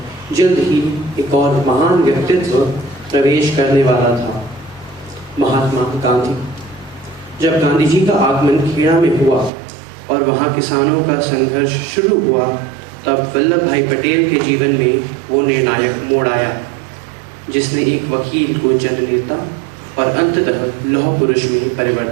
जल्द ही एक और महान व्यक्तित्व प्रवेश करने वाला था, महात्मा गांधी। जब गांधी जी का आगमन खेड़ा में हुआ और वहाँ किसानों का संघर्ष शुरू हुआ, तब वल्लभ भाई पटेल के जीवन में वो निर्णायक मोड़ आया, जिसने एक वकील को जननेता और अंततः लौह पुरुष में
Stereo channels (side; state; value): left; drops out; at 9.5 s